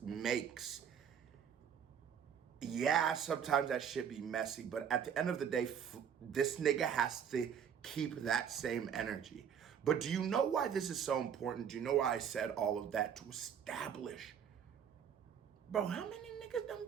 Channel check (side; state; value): left; quieter; 8.0 dB